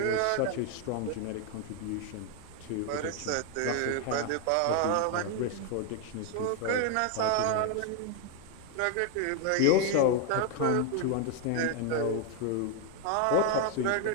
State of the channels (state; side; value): different; both; correlation 0.01